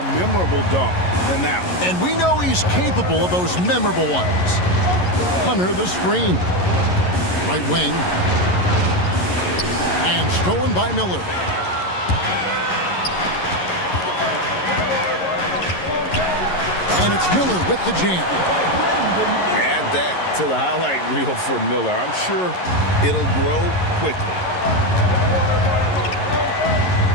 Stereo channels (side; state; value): right; late; 11 ms